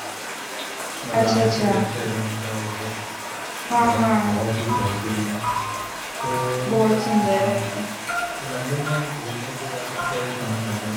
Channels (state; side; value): identical; both; correlation 1.00